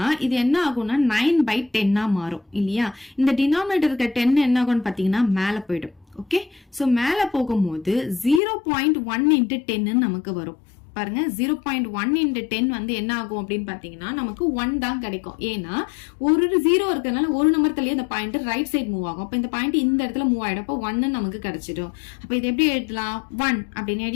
இது என்ன ஆகும்னா 9/10 மாறும் இல்லையா? இந்த டினாமினேட்டர் இருக்க 10 என்ன ஆகும்னு பாத்தீங்கன்னா மேல போயிடும். ஓகே, சோ மேல போகும்போது 0.1 இன்ட்டு 10 நமக்கு வரும். பாருங்க 0.1 into 10 வந்து என்ன ஆகும் அப்படின்னு பாத்தீங்கன்னா நமக்கு 1 தான் கிடைக்கும். ஏன்னா ஒரு 0 இருக்கிறதுனால ஒரு நம்பர் தள்ளியே அந்த பாயிண்ட் ரைட் சைடு மூவ் ஆகும். அப்ப இந்த பாயிண்ட் இந்த இடத்துல மூவ் ஆயிடும். அப்ப 1 நமக்கு கிடைச்சிடும். அப்ப இது எப்படி எழுதலாம், 1 அப்படின்னு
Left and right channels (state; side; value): drops out; right; at 8.4 s